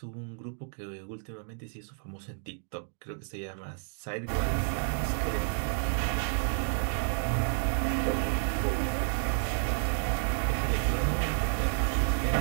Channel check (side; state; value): left; silent; digital silence